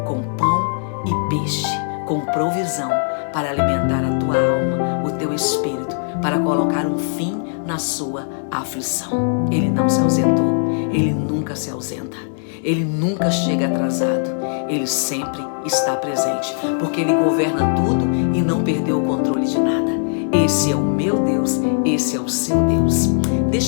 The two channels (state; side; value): silent; right; 62 dB below the other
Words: com pão e peixe, com provisão para alimentar a tua alma, o teu espírito, para colocar um fim na sua aflição. Ele não se ausentou. Ele nunca se ausenta. Ele nunca chega atrasado. Ele sempre está presente, porque ele governa tudo e não perdeu o controle de nada. Esse é o meu Deus, esse é o seu Deus.